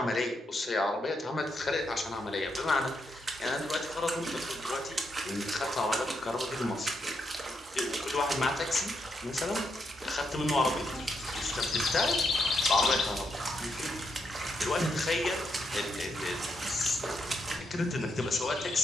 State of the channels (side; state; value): both; normal; correlation 0.80